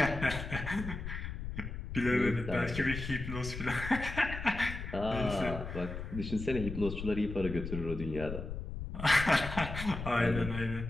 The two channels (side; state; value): left; noise; rumble, 7 dB below the sound